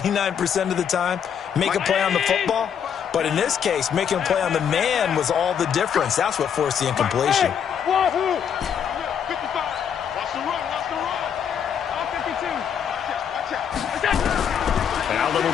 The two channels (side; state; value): right; quieter; 8.1 dB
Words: of the time, make a play on the football. But in this case, making a play on the man was all the difference. That's what forced the incompletion. Wahoo! 55. Watch the run. All 52. Allen